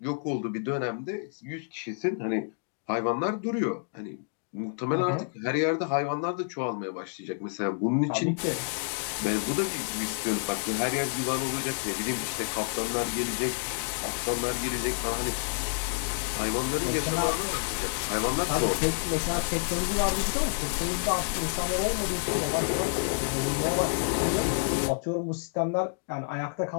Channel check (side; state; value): right; silent; digital silence